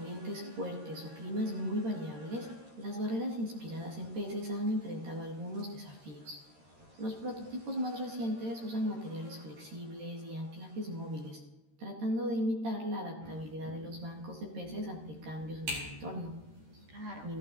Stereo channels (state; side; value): late; left; 13 ms